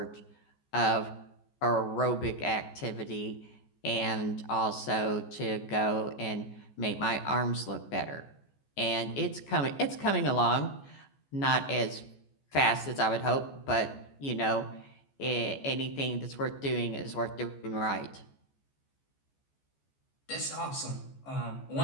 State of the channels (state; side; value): late; right; 14 ms